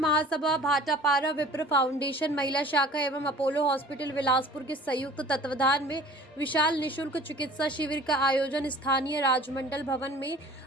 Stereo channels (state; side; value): normal; both; correlation 0.47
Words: भाटापारा विप्र फाउंडेशन महिला शाखा एवं अपोलो हॉस्पिटल बिलासपुर के संयुक्त तत्वाधान में विशाल निशुल्क चिकित्सा शिविर का आयोजन स्थानीय राजमंडल भवन में